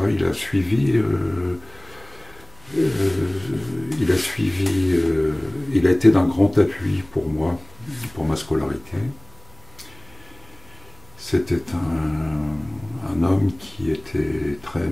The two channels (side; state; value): right; noise; hum, 25 dB below the sound